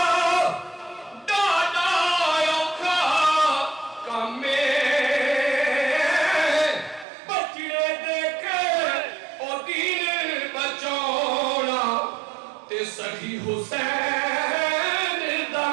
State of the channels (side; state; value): left; drops out; at 7.1 s